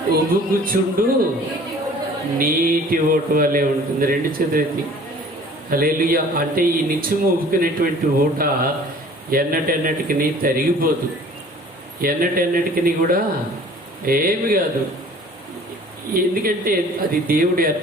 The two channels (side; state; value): both; normal; correlation 0.49